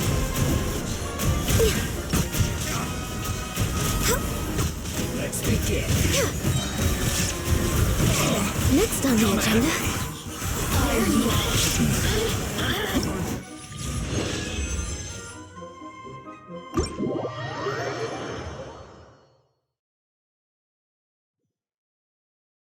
Let's begin. Next on the agenda.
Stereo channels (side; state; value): both; identical; correlation 1.00